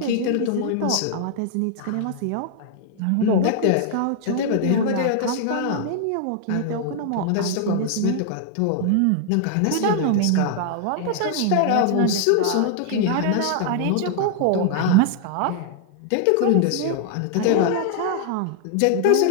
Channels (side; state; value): both; different; correlation 0.00